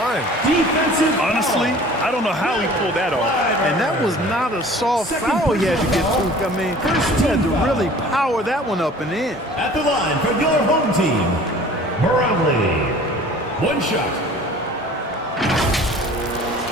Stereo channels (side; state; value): both; normal; correlation 0.47